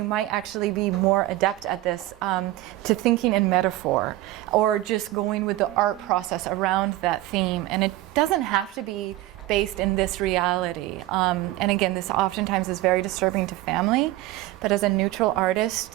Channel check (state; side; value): quieter; left; 16.7 dB